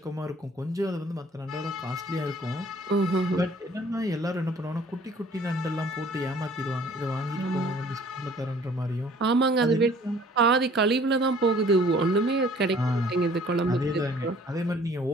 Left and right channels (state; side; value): normal; both; correlation 0.54